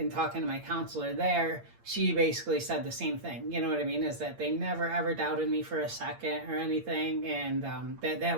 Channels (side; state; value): left; late; 8.7 ms